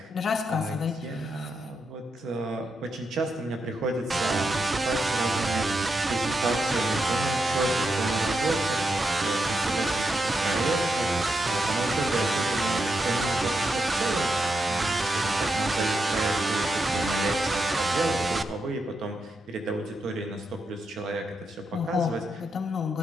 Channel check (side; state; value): both; normal; correlation 0.84